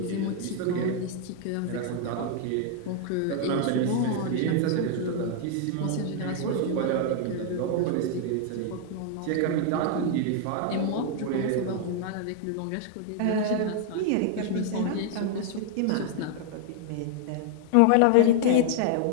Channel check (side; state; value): both; different; correlation 0.00